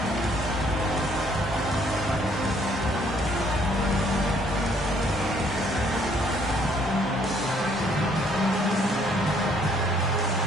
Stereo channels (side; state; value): both; normal; correlation 0.64